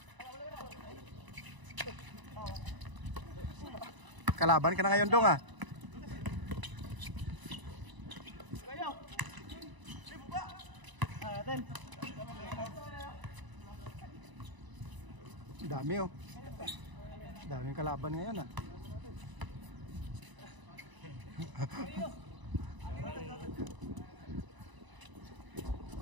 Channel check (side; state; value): left; late; 1.0 ms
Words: Kalaban ka na ngayon dong ah. Dami oh. Daming kalaban ngayon ah.